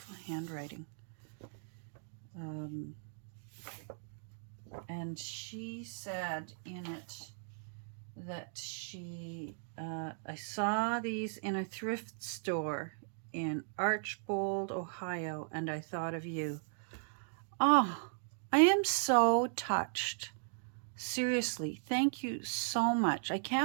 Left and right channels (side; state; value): left; silent; digital silence